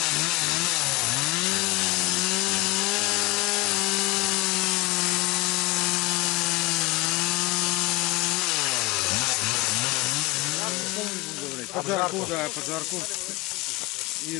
Поджарку, да, поджарку.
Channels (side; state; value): right; quieter; 22.7 dB